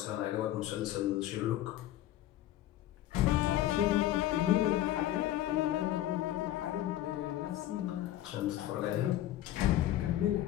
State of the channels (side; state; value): right; quieter; 13.7 dB